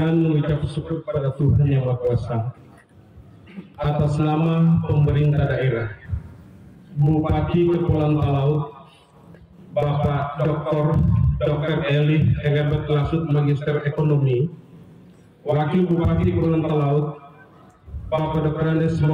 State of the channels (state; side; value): identical; both; correlation 1.00